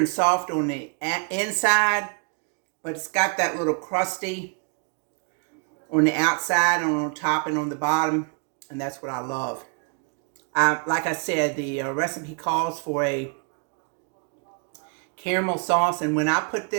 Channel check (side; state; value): left; quieter; 35.4 dB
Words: soft on the inside, but it's got that little crusty on the outside, on top, and on the bottom, and that's what I love. Like I said, the recipe calls for a caramel sauce, and when I put